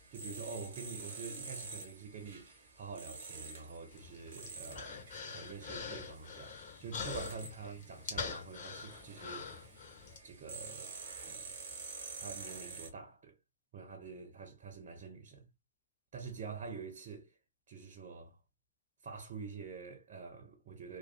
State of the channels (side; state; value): both; inverted; correlation -0.37